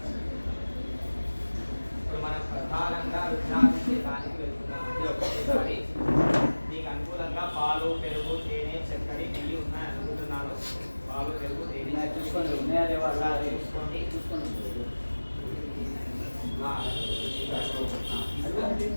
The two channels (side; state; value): both; inverted; correlation -1.00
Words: ఇప్పుడు మనం ప్రధానంగా రుద్రాభిషేకానికి వెళ్తున్నాం. మీకు అనుకూలంగా పాలు, పెరుగు, తేనె, చక్కెర, నెయ్యి ఉన్నాయి అనుకుంటున్నాను. పాలు, పెరుగు, తేనె చూసుకోండి.